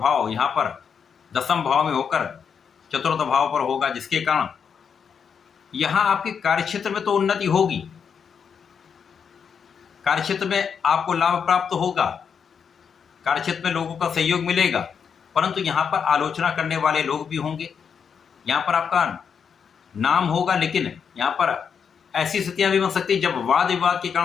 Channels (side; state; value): right; quieter; 6.8 dB